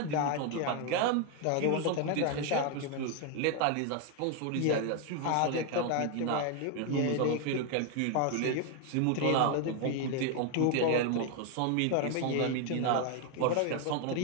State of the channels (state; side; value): different; both; correlation 0.01